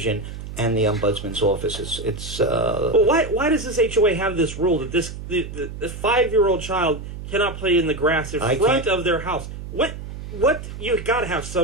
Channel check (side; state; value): right; noise; hum, 10 dB below the sound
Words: and the Ombudsman's office. Well, why does this HOA have this rule that the 5-year-old child cannot play in the grass in front of their house? What you got to have